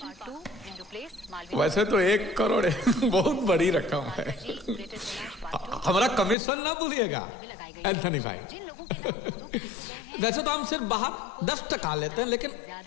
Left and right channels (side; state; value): right; drops out; at 6.4 s